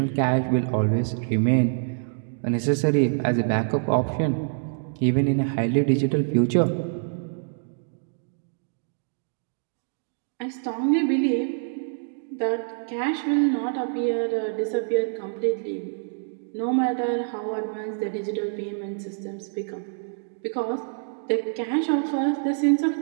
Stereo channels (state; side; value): silent; left; digital silence